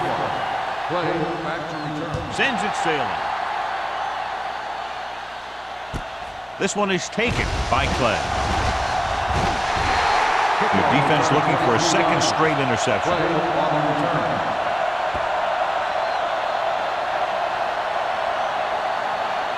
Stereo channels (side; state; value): both; identical; correlation 1.00